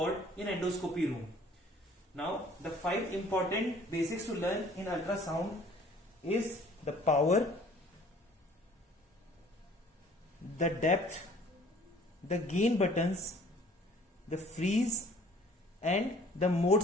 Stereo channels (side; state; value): both; normal; correlation 0.54